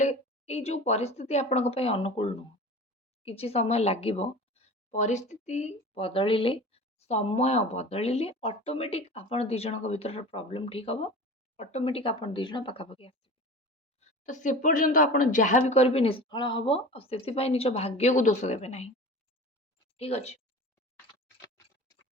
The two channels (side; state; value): both; normal; correlation 0.36